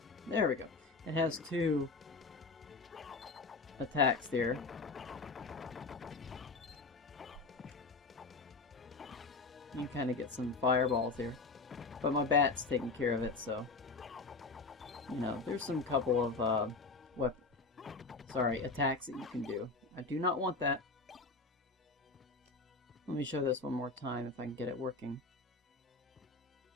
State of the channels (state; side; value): quieter; right; 3.9 dB